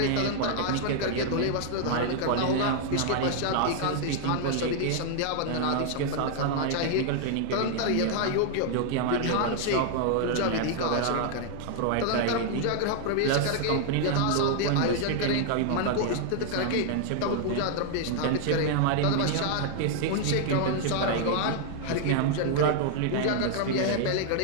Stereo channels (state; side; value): different; both; correlation 0.00